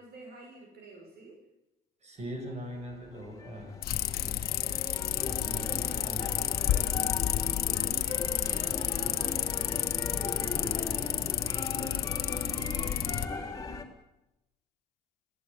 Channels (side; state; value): right; quieter; 8.8 dB